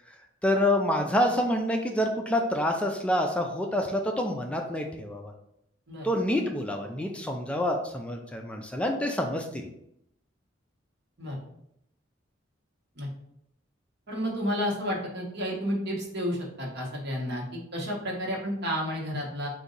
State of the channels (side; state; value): both; normal; correlation 0.54